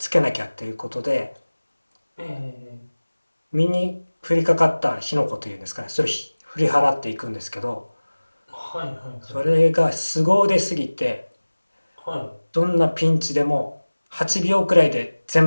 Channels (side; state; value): both; inverted; correlation -1.00